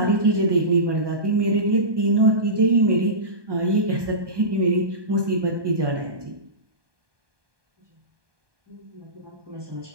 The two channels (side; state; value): left; late; 1.2 ms